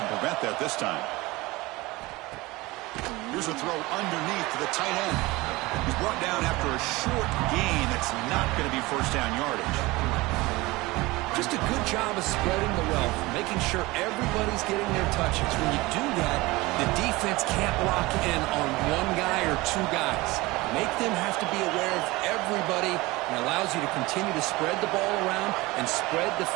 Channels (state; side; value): quieter; left; 21.4 dB